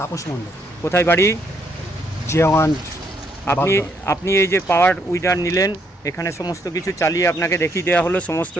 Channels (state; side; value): normal; both; correlation 0.72